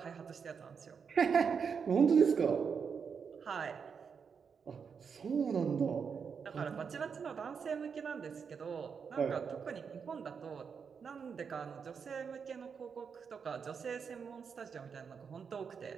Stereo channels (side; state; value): left; quieter; 6.3 dB